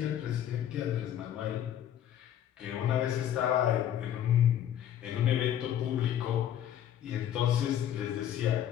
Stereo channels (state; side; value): quieter; right; 10.6 dB